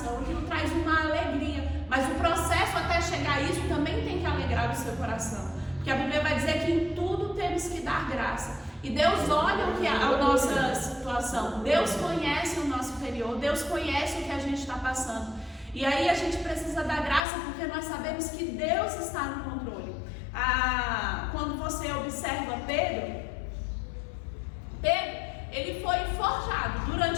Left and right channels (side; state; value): right; drops out; at 17.2 s